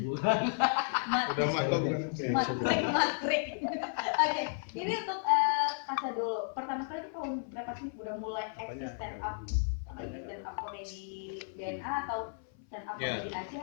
Udah maklum kan. Matrik. Oke, ini untuk Kasa dulu. Pertama kali itu tahun berapa sih udah mulai eksis stand up komedi DNA atau stand up komedi Aceh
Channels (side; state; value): right; silent; 56 dB below the other